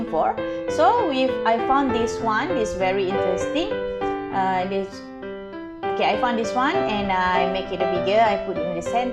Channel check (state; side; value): identical; both; correlation 1.00